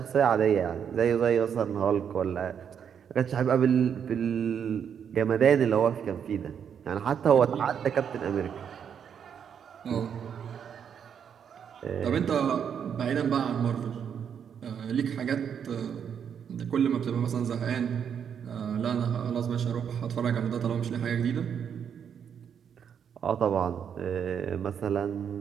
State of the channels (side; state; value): left; quieter; 7.9 dB